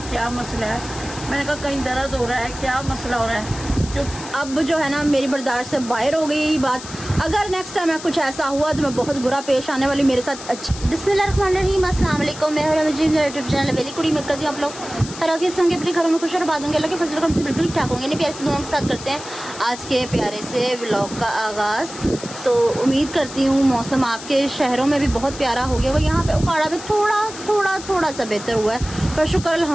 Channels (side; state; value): left; noise; hiss, 13 dB below the sound